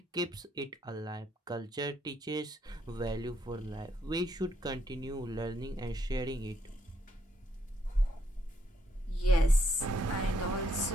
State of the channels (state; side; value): normal; both; correlation 0.74